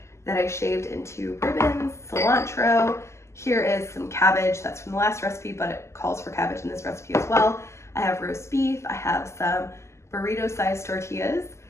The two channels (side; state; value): right; late; 0.13 ms